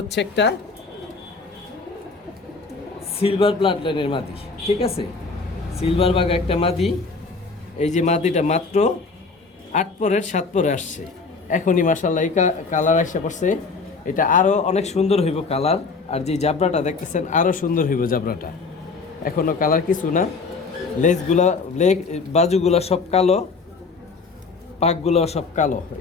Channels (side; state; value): right; quieter; 4.3 dB